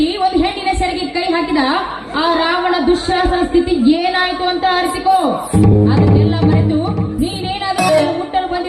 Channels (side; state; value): both; identical; correlation 1.00